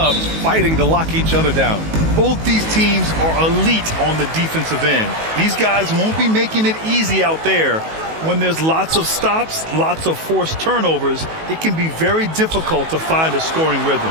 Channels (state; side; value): late; left; 19 ms